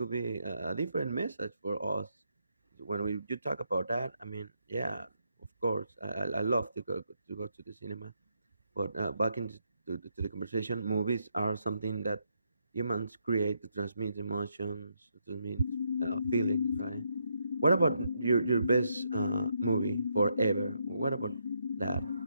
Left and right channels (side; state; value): both; inverted; correlation -0.78